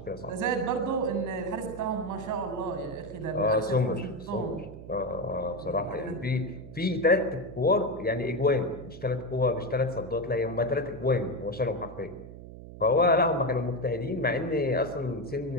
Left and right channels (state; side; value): noise; right; hum, 14 dB below the sound